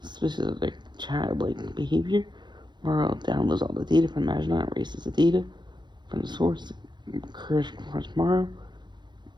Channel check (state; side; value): late; left; 0.21 ms